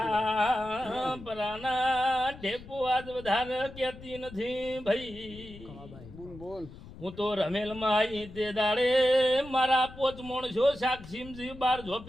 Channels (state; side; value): noise; left; rumble, 17 dB below the sound